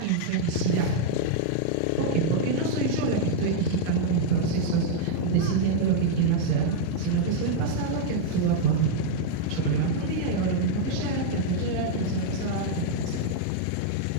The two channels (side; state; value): both; different; correlation -0.01